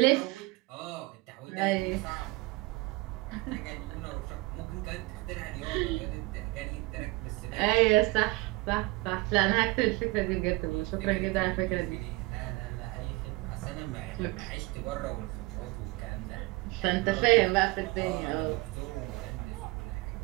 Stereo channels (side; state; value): left; quieter; 23.1 dB